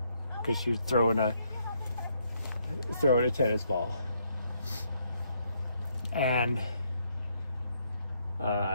because she was throwing a tennis ball. And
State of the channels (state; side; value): inverted; both; correlation -0.73